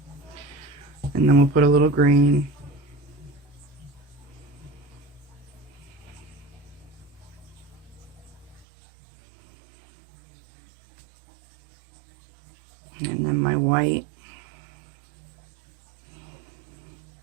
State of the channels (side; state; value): left; drops out; at 8.7 s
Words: And then we'll put a little green. And then my white.